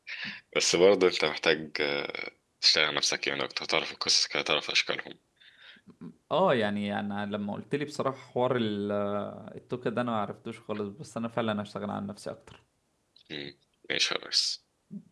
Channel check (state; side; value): identical; both; correlation 1.00